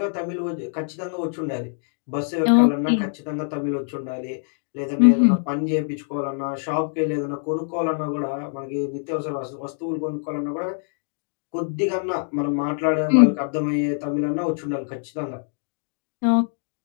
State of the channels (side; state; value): right; silent; digital silence